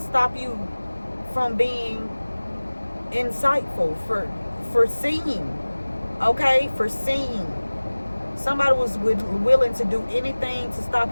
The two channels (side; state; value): both; inverted; correlation -1.00